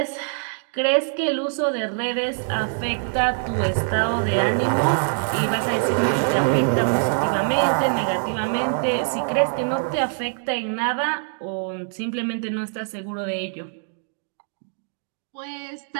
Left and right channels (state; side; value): silent; left; 63 dB below the other